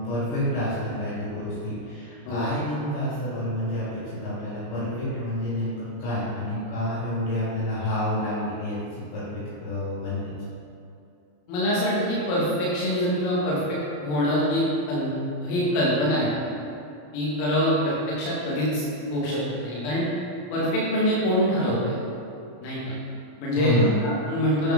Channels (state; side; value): late; right; 34 ms